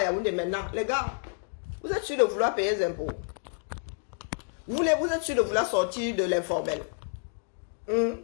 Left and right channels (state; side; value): silent; right; digital silence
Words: il y a des maintenant. Les gars, vous êtes sûrs de vouloir payer les impôts. Vous êtes sûrs de vouloir sortir de l'informel.